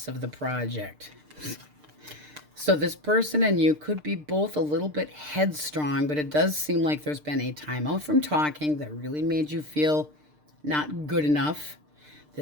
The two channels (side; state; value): left; late; 6.6 ms